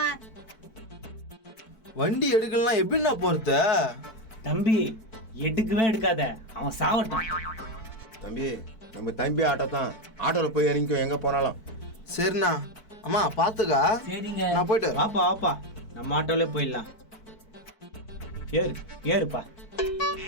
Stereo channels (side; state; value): right; late; 4.5 ms